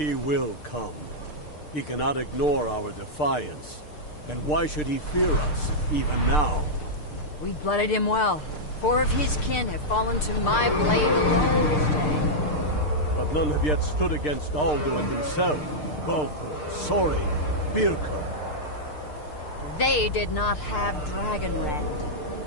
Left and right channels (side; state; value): right; late; 6.6 ms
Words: will come. He cannot ignore our defiance. And why should he fear us, even now? We blooded him well. 4 of his kin have fallen to my blade alone this day. But none have yet stood against Alduin himself. Golthor, Sori, Birka. They did not have